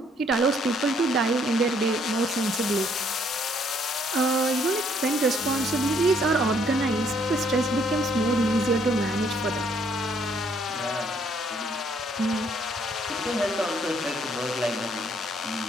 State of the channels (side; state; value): both; normal; correlation 0.67